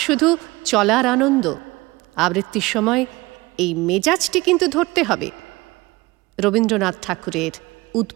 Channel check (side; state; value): left; quieter; 21.8 dB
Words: শুধু চলার আনন্দ। আবৃত্তির সময় এই মেজাজটি কিন্তু ধরতে হবে। রবীন্দ্রনাথ ঠাকুরের